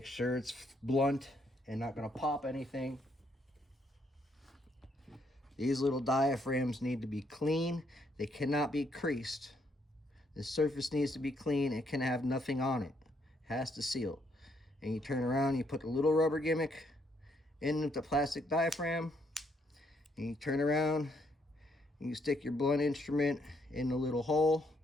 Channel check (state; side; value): normal; both; correlation 0.72